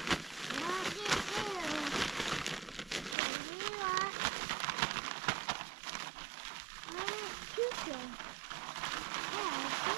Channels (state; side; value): drops out; left; at 3.2 s